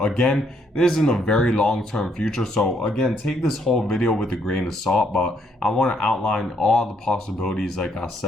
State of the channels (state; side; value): normal; both; correlation 0.71